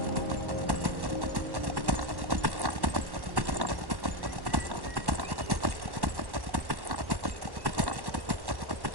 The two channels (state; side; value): late; left; 1.1 ms